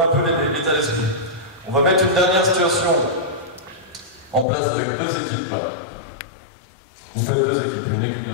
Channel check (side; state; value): right; drops out; at 4.5 s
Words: un peu l'état d'esprit. On va mettre une dernière situation en place avec 2 équipes. Vous faites 2 équipes, une équipe de